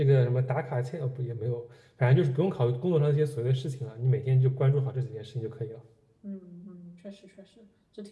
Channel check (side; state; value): both; identical; correlation 1.00